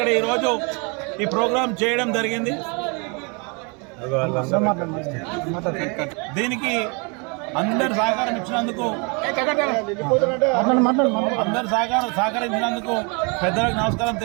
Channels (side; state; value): left; quieter; 32.4 dB